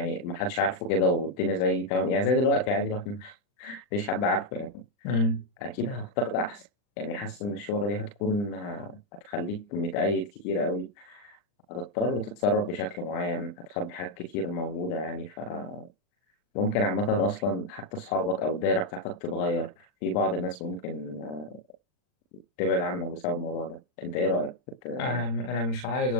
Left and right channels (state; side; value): late; right; 39 ms